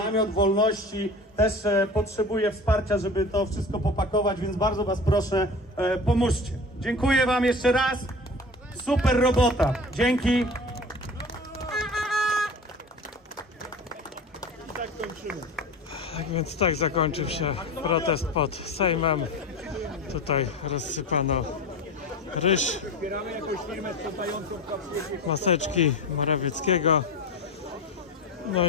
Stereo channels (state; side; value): normal; both; correlation 0.34